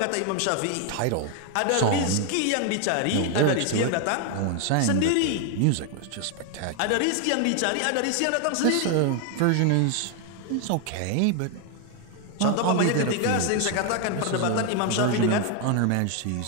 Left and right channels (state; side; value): different; both; correlation 0.01